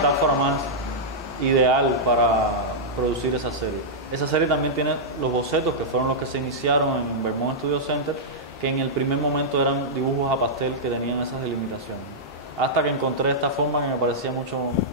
más ideal para producir esa serie. Esa serie también tiene los bocetos, que fueron los que se iniciaron en Vermont Studio Center, que en el primer momento eran dibujos a pastel que tenían esas delimitaciones. Hasta que encontré esta forma que me parecía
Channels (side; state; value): both; normal; correlation -0.10